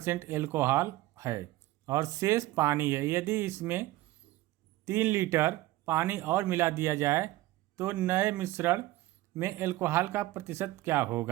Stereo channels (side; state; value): left; quieter; 17.2 dB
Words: एल्कोहल है और शेष पानी है। यदि इसमें 3 लीटर पानी और मिला दिया जाए तो नए मिश्रण में एल्कोहल का प्रतिशत क्या